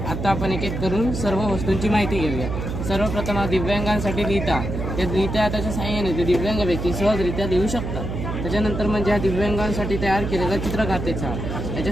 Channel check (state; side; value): noise; right; hum, 4 dB below the sound